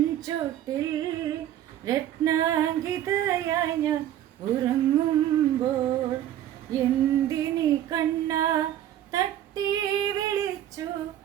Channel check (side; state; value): left; quieter; 11.8 dB